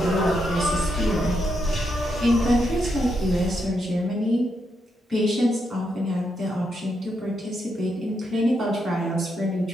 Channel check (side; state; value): both; normal; correlation 0.81